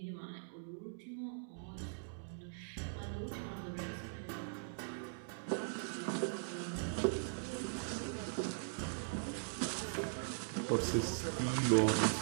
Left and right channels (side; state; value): left; silent; digital silence